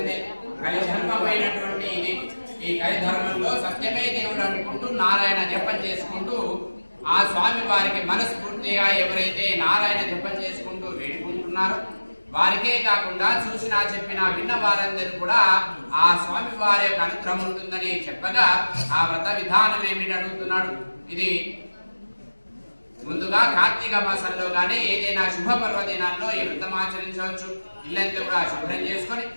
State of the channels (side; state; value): both; inverted; correlation -1.00